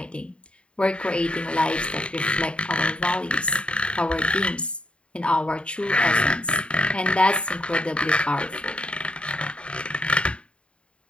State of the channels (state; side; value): late; right; 0.057 ms